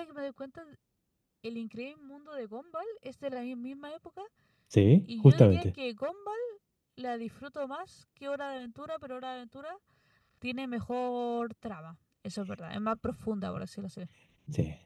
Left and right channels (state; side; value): identical; both; correlation 1.00